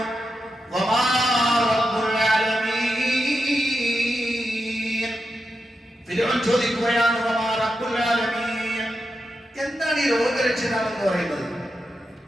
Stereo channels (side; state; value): both; normal; correlation 0.88